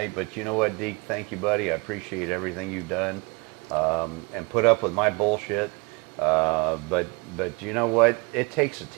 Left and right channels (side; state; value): left; quieter; 28.6 dB